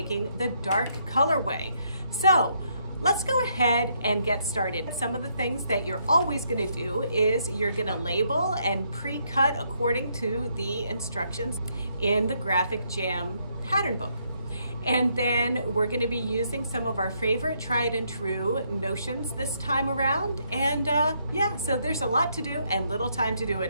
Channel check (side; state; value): both; inverted; correlation -0.73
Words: the dark colorway. So let's go ahead and get started. Some of the things that you're always gonna do is you're gonna label and pre-cut according to the instructions in the Graphic Jam pattern book. And then we're gonna be using some of our favorite tried and true notions this time around. And yeah, so there's a lot to do and little time to do